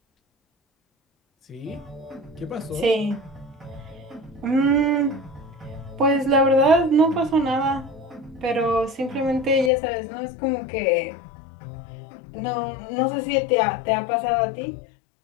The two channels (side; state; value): right; drops out; at 9.7 s